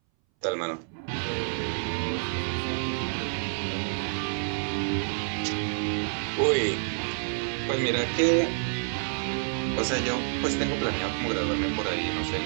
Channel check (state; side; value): silent; left; 59 dB below the other